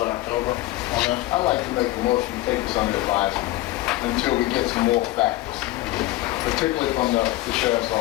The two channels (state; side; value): quieter; right; 17.2 dB